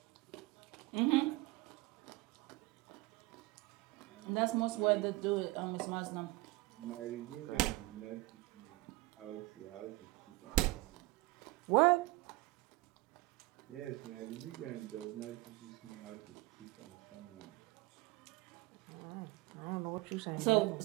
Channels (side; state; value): left; quieter; 21.4 dB